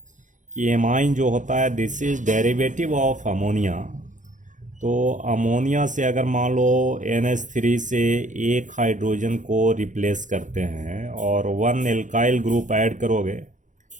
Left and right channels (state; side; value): late; left; 0.36 ms